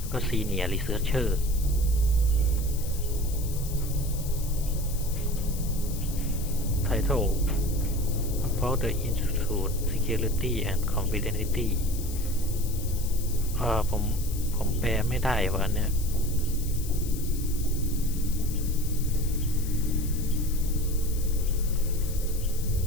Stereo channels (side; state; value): left; noise; hiss, 12 dB below the sound